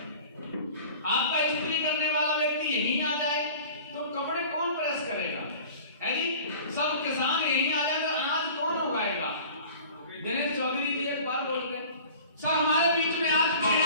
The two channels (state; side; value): inverted; both; correlation -0.44